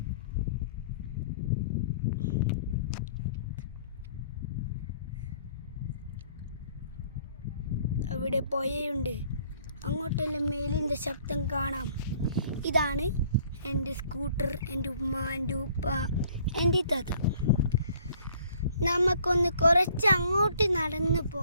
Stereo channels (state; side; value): inverted; both; correlation -0.58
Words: അവിടെ പുഴയുണ്ട്. അങ്ങോട്ടെല്ലാം മേലിൻ്റെ ശബ്ദം കാണാം. ഇതാണ് എൻ്റെ സ്കൂട്ടർ, എൻ്റെ ഉമ്മ, എൻ്റെ ഉപ്പ, എൻ്റെ താത്ത. നമുക്കൊന്ന് കുറച്ച് അങ്ങോട്ട് നടന്നു